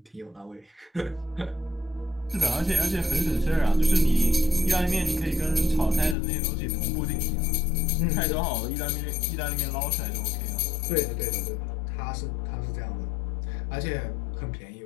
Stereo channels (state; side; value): drops out; right; at 6.2 s